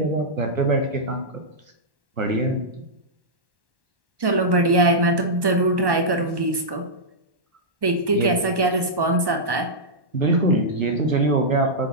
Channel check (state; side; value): late; left; 1.1 ms